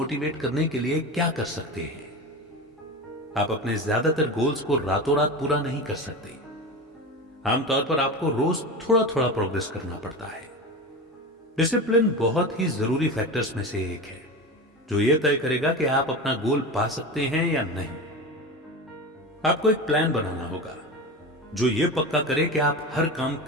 करने के लिए क्या कर सकते हैं? आप अपने ज्यादातर गोल्स को रातों रात पूरा नहीं कर सकते। आमतौर पर आपको रोज थोड़ा थोड़ा प्रोग्रेस करना पड़ता है। डिसिप्लिन बहुत ही जरूरी फैक्टर्स में से एक है जो यह तय करेगा कि आप अपना गोल पा सकते हैं या नहीं। आपको एक प्लान बनाना होगा जो यह पक्का करे कि आप हर काम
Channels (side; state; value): both; normal; correlation 0.26